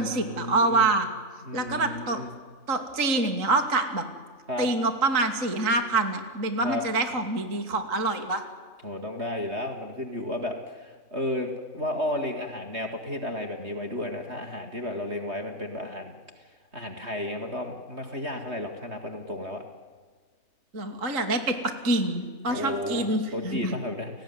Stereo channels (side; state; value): left; late; 3.8 ms